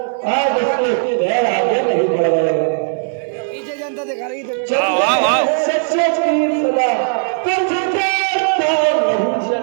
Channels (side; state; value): left; silent; 60 dB below the other